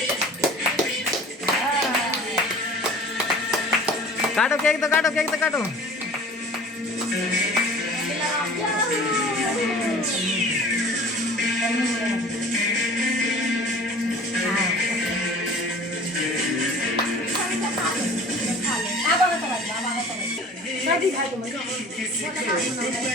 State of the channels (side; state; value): both; normal; correlation 0.44